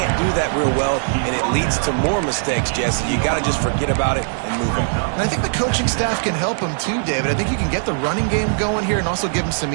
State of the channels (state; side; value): silent; left; 66 dB below the other